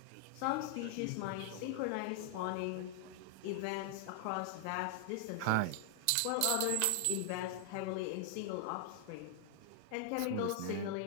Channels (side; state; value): both; different; correlation 0.00